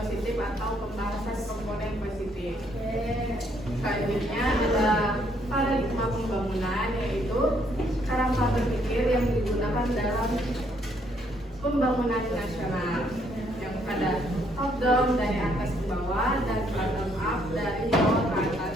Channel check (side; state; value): both; normal; correlation 0.69